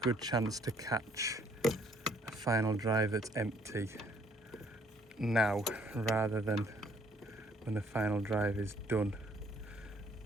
chance to catch a final drive that's empty now rather than when the final drive is done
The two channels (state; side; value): normal; both; correlation 0.63